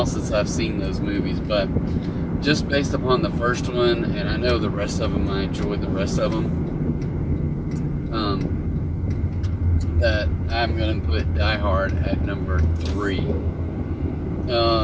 since I've seen those movies, but just based upon the first one, and I know the rest of them, I enjoyed the rest of them, that I'm going to put Die Hard at number 3.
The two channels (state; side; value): identical; both; correlation 1.00